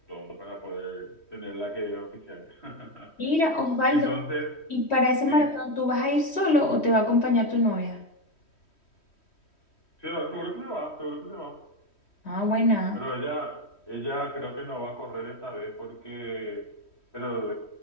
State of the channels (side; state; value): right; late; 3.1 ms